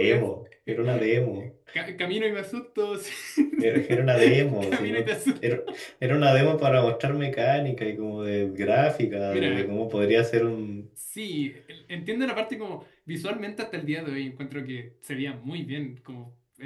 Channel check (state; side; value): identical; both; correlation 1.00